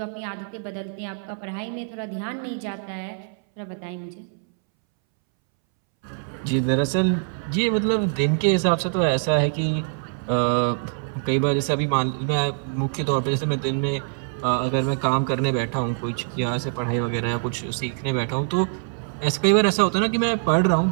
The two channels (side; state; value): left; silent; 63 dB below the other